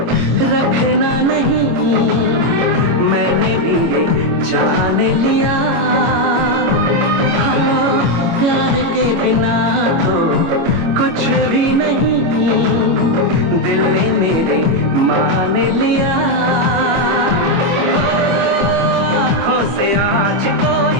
रखना नहीं, मैंने भी ये जान लिया। हाँ, प्यार के बिना तो कुछ भी नहीं, दिल ने मेरे मान लिया, आँखों से आज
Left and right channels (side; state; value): left; late; 25 ms